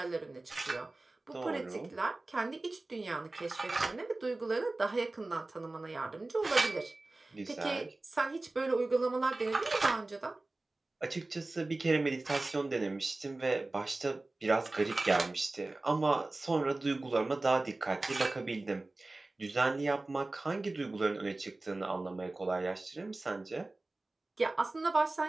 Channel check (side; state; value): left; quieter; 3.0 dB